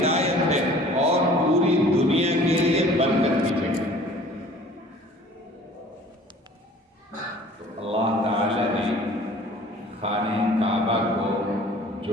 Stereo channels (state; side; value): normal; both; correlation 0.49